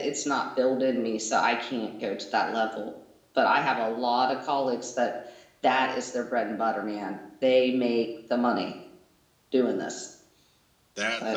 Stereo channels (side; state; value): both; identical; correlation 1.00